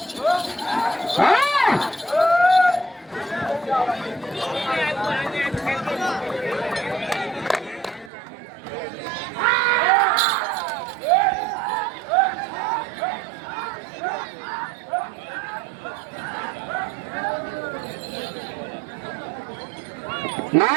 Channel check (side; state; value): left; drops out; at 8.1 s